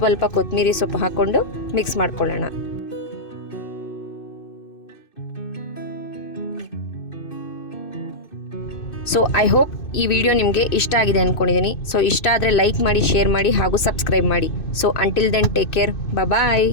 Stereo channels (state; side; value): late; right; 2.6 ms